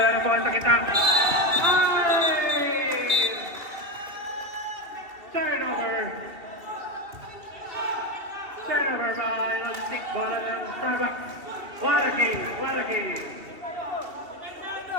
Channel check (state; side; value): late; left; 2.7 ms